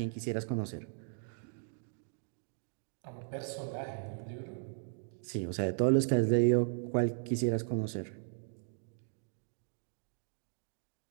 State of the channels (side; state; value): left; silent; digital silence